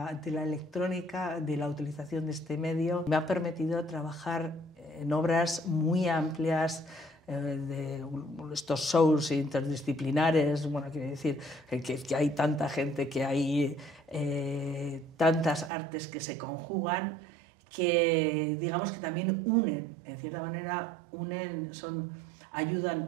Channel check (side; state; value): left; drops out; at 15.7 s